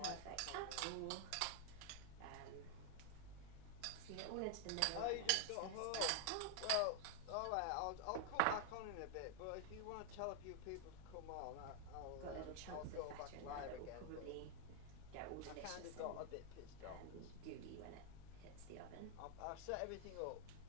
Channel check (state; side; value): different; both; correlation 0.00